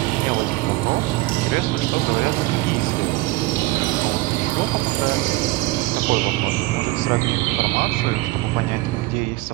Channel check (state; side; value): quieter; left; 20.0 dB